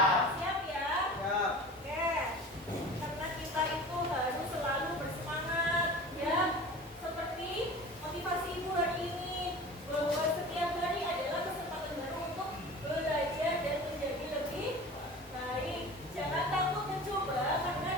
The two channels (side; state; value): both; normal; correlation 0.37